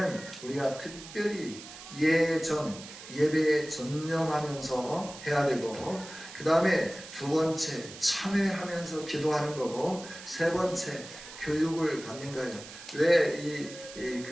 우리가 특별히 예배에 전념하면서 해야 되고 그 다음에 두 번째 참회하면서 기도하는 거고 세 번째 교육을 받는 거예요. 왜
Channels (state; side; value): noise; right; hiss, 15 dB below the sound